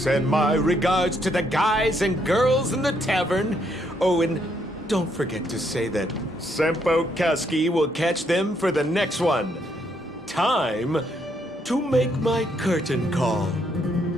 my regards to the guys and girls in the tavern. Oh, and don't forget to say that Sempo Kuski will catch them for the next one. Time to make my curtain call.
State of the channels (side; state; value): both; normal; correlation 0.73